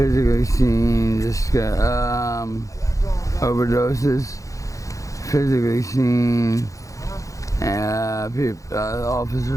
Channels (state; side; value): late; right; 0.16 ms